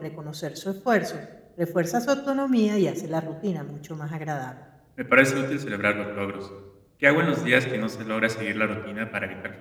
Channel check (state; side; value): identical; both; correlation 1.00